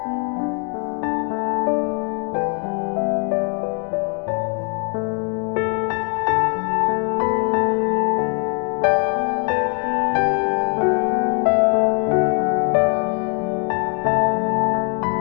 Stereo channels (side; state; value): right; quieter; 38.8 dB